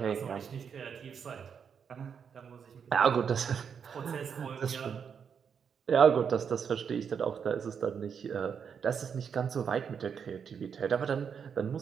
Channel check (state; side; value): quieter; left; 7.0 dB